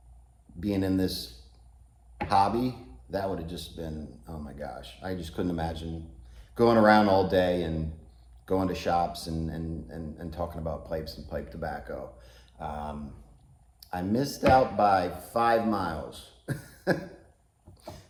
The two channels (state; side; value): identical; both; correlation 1.00